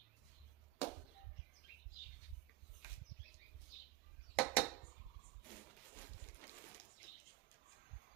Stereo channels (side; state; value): left; quieter; 17.9 dB